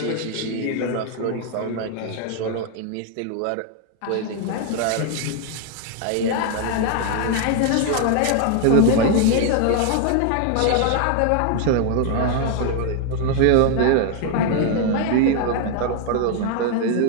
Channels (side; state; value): both; different; correlation 0.00